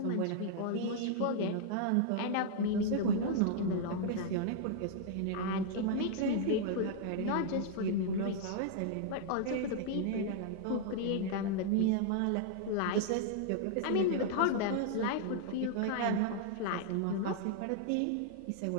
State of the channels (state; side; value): different; both; correlation -0.01